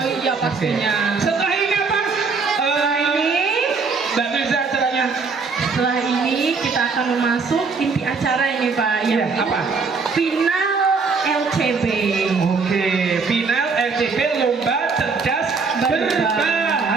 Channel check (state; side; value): quieter; left; 4.7 dB